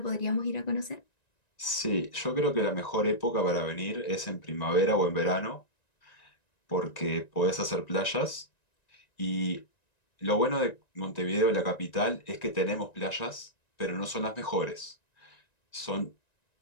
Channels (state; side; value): late; right; 1.9 ms